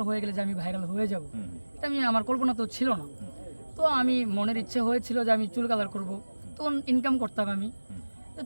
হয়ে গেলে যে আমি ভাইরাল হয়ে যাব, এটা আমার কল্পনা তো ছিল না। তো আমি মনের ইচ্ছে হয়েছিল যে আমি চুল কালার করব, তখন ইনকাম করতাম আমি। তো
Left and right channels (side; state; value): both; inverted; correlation -1.00